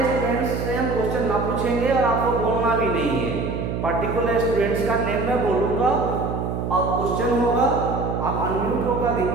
स्टूडेंट्स से हम क्वेश्चन ना पूछेंगे और आपको बोलना भी नहीं है. पर्टिकुलर स्टूडेंट्स का नेम मैं बोलूंगा और क्वेश्चन होगा, आप अनम्यूट होकर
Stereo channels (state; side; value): noise; right; hum, 3 dB below the sound